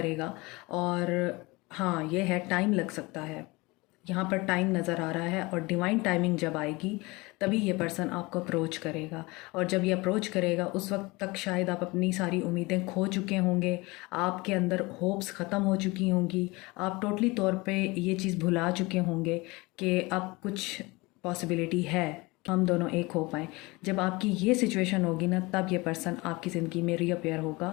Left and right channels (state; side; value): quieter; right; 23.7 dB